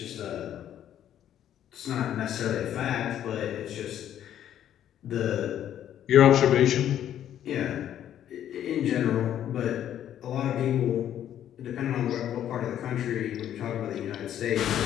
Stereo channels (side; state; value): right; quieter; 10.7 dB